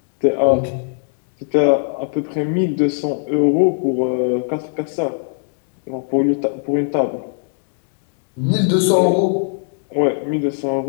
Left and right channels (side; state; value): right; silent; digital silence